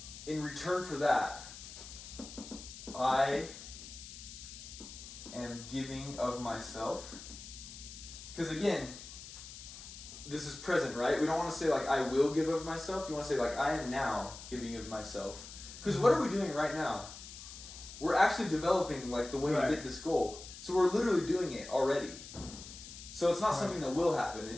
In return for that, I am giving of myself. Because again, this is present, right? We don't want to say like, I will give of myself. You want to say like, I am now giving of myself. Because what are we doing right now? We're actually developing like the way to get this goal. So we're literally doing it already. So it's not something that will happen.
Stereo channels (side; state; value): left; noise; hiss, 13 dB below the sound